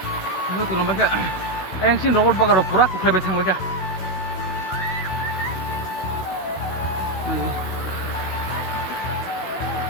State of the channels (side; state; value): right; late; 16 ms